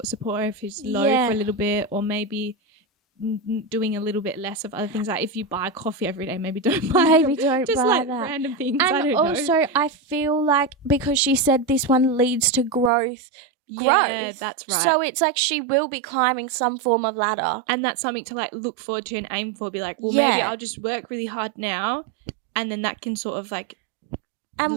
of support her if she's low for a little bit, or maybe doing a little bit less of other things. Like if you buy coffee every day, maybe don't buy just buy like that. Random things. And I don't also know. I feel like because she said this one leads to growth. Yeah, that's right. So it's like she will be climbing some form of ladder. And that's something to like look forward to and aim for. Be like, well, maybe I'll just work really hard now, and then that can sort of like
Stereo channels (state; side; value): drops out; left; at 12.9 s